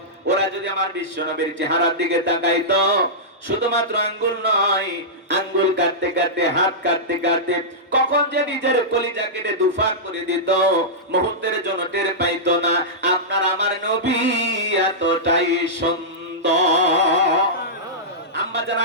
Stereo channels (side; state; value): both; normal; correlation -0.13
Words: ওরা যদি আমার বিশ্ব নবীর চেহারার দিকে তাকাইতো, শুধুমাত্র আঙ্গুল নয়, আঙ্গুল কাটতে কাটতে, হাত কাটতে কাটতে কখন যে নিজের কলিজা কেটে দুফাক করে দিত, মুহূর্তের জন্য টের পাইতো না। আপনার আমার নবী এতটাই সুন্দর। আম্মা জান